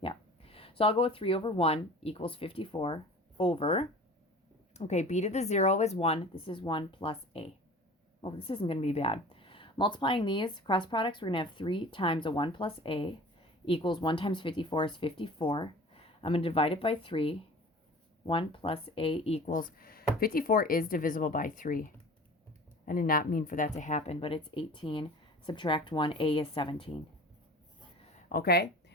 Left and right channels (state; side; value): normal; both; correlation 0.41